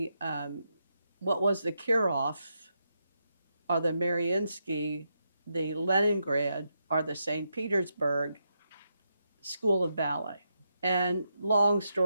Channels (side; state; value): both; inverted; correlation -0.83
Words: what was the Kirov, or the Mariinsky, the Leningrad, or the St. Petersburg School of Ballet. And long